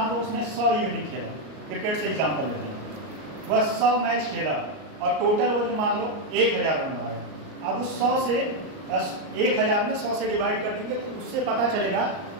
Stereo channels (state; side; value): late; left; 38 ms